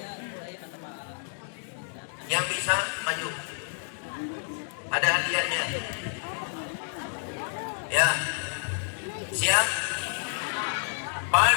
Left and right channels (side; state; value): right; silent; digital silence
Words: yang bisa maju, ada hadiahnya ya. Siap?